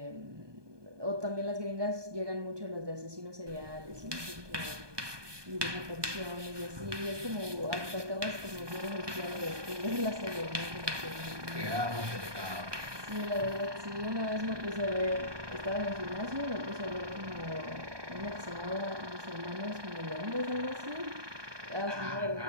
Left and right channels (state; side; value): late; left; 1.2 ms